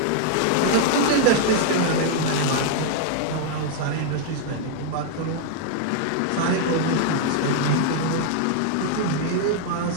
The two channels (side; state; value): both; different; correlation 0.00